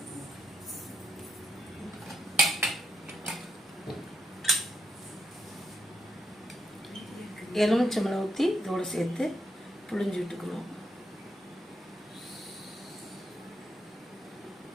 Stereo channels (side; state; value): both; normal; correlation 0.80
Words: எலுமிச்சம்பழம் ஊற்றி இதோட சேர்த்து புழிஞ்சு விட்டுக்கணும்.